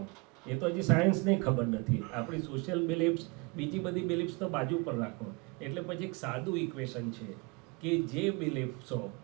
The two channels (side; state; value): left; quieter; 29.1 dB